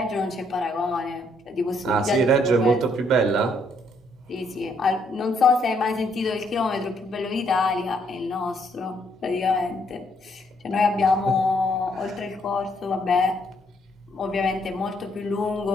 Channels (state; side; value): normal; both; correlation 0.71